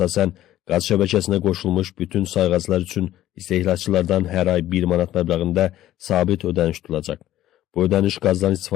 qaz şəbəkəsinə qoşulmuş bütün sayğaclar üçün istehlakçılardan hər ay 1 manat məbləğində sabit ödəniş tutulacaq. Bu ödəniş qazdan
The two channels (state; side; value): quieter; right; 13.6 dB